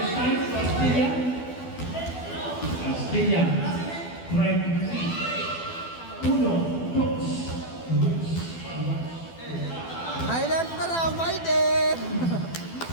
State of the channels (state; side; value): late; right; 12 ms